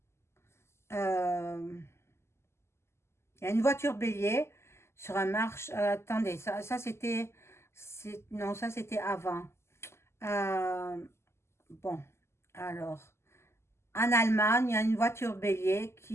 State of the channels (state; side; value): late; right; 0.13 ms